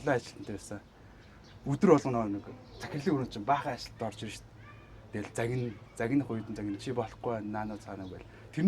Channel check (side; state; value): both; identical; correlation 1.00